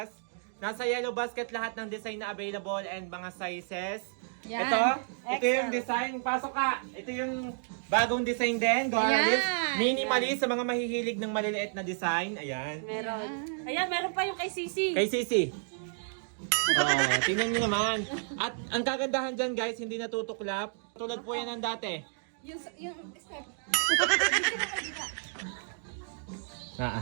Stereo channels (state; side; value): silent; left; digital silence